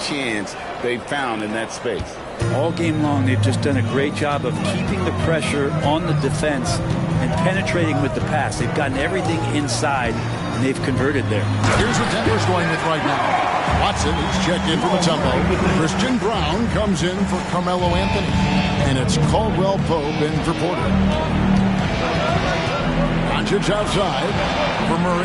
they've found in that space. All game long, they've just done a great job of keeping the pressure on the defense and penetrating with the pass. They've gotten everything inside, and they've converted there. Here's what Denver's going with right now. Watson, he's checked in for Mutombo. Christian Brown comes in for Carmelo Anthony. And it's Caldwell Pope in for Porter. Doncic outside for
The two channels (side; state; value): both; identical; correlation 1.00